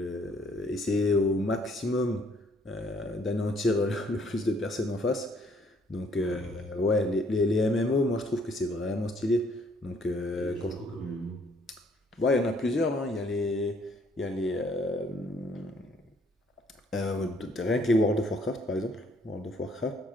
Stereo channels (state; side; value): normal; both; correlation 0.64